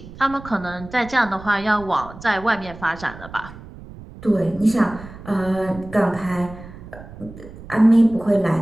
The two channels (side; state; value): right; noise; rumble, 16 dB below the sound